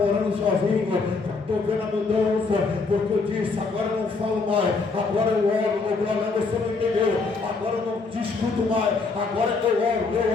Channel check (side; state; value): right; quieter; 4.2 dB